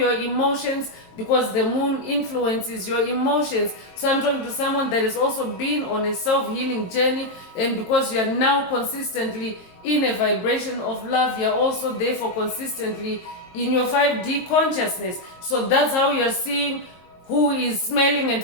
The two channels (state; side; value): late; right; 22 ms